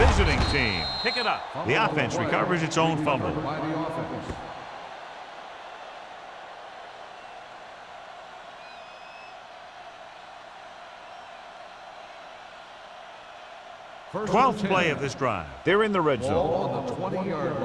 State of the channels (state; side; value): identical; both; correlation 1.00